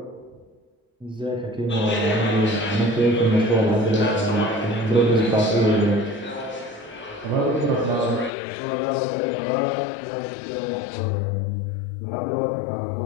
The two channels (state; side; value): drops out; right; at 8.3 s